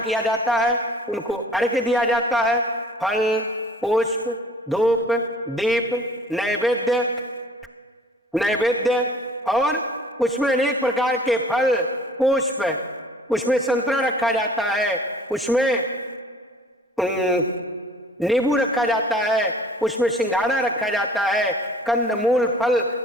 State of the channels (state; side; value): normal; both; correlation 0.50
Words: जाता है, उनको अर्घ्य दिया जाता है। फल, पुष्प, धूप, दीप, नैवेद्य और उसमें अनेक प्रकार के फल, पुष्प, उसमें संतरा रखा जाता है, उसमें नींबू रखा जाता है, उसमें सिंघाड़ा रखा जाता है, कंदमूल फल,